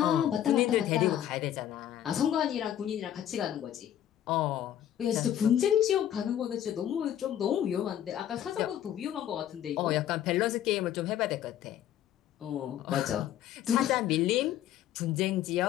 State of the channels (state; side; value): quieter; right; 11.1 dB